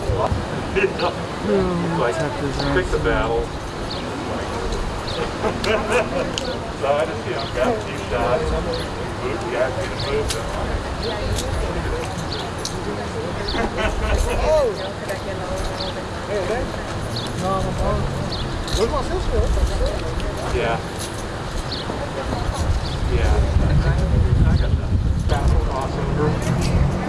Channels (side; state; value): both; identical; correlation 1.00